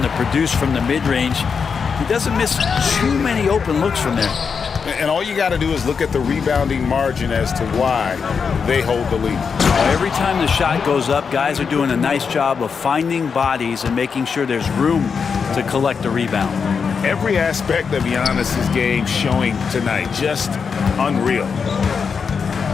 to produce from the mid-range. He doesn't miss too many open looks from there. And all you got to do is look at the rebounding margin as to why they hold the lead. Every time the shot goes up, guys are doing a nice job of finding bodies and making sure there's room to collect the rebound. Every aspect of Giannis's game showing tonight, just unreal.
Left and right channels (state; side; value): quieter; right; 5.9 dB